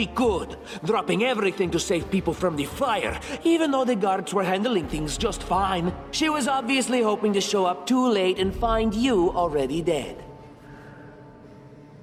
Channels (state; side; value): identical; both; correlation 1.00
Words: could, dropping everything to save people from the fire, even though the guards were handling things just fine. She was obviously hoping to show up too late and find you already dead.